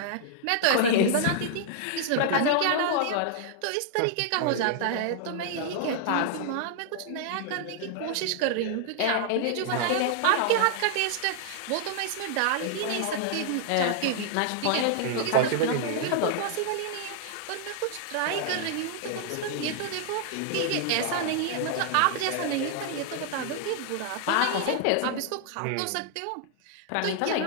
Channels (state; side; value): different; both; correlation -0.01